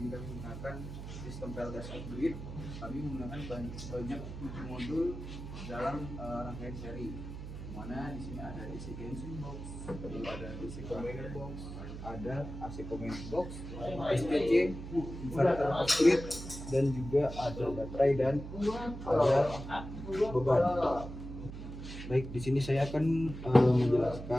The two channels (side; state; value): right; noise; hum, 9 dB below the sound